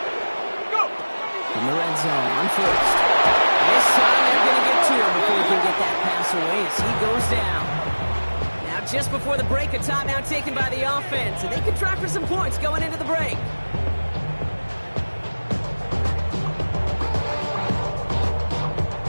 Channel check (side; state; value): both; inverted; correlation -1.00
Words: In the red zone on first. This time they're going to get to him before he can get that pass away as he goes down. Now just before the break, a timeout taken by the offense, and they can try for some points going into the break.